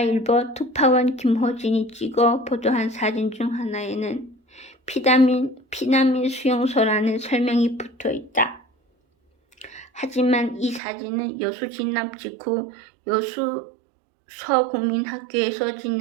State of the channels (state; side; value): drops out; left; at 10.8 s